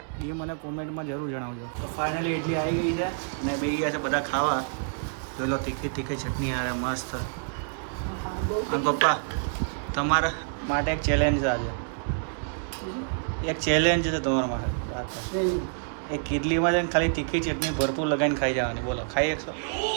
એ મને કોમેન્ટમાં જરૂર જણાવજો. તો ફાઇનલી ઇડલી આવી ગઈ છે અને બે ગયા છે બધા ખાવા. જોઈ લો તીખી ચટણી યાર મસ્ત. અને પપ્પા તમારા માટે એક ચેલેન્જ છે આજે. એક ચેલેન્જ છે તમારા માટે. એક ઇડલીમાં છે ને ખાલી તીખી ચટણી ભરપૂર લગાવીને ખાઈ જવાની. બોલો, ખાઈ શકશો?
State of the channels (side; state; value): left; silent; digital silence